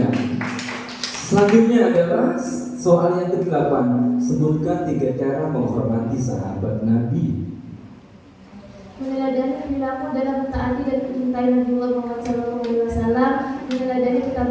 Selanjutnya adalah soal yang ke-8. Sebutkan 3 cara menghormati sahabat Nabi. Meneladani perilaku dalam mentaati dan mencintai Nabiullah Muhammad SAW, meneladani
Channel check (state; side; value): identical; both; correlation 1.00